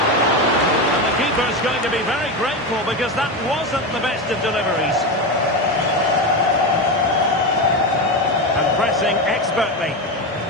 the keeper's going to be very grateful because that wasn't the best of deliveries. And pressing expertly.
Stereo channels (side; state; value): both; normal; correlation 0.16